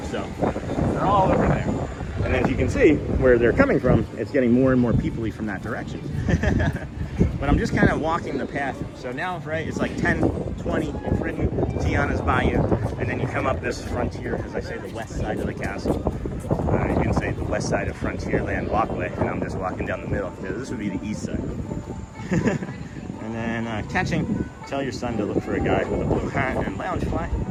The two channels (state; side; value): identical; both; correlation 1.00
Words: So they're all over there. And as you can see where they're coming from, it's getting more and more people-y from that direction. But I'm just kind of walking the path. So now, right, it's like 10, 20, you've ridden Tiana's Bayou, and then you come up this frontier, as I say, the west side of the castle. You can say the west side of Frontierland walkway, and I'm just walking down the middle. Yeah, this would be the east side. And then catching, tell your son to look for a guy with a blue hat and lounge fly.